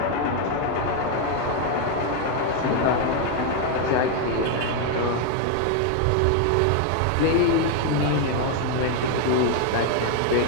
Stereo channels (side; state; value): both; different; correlation 0.01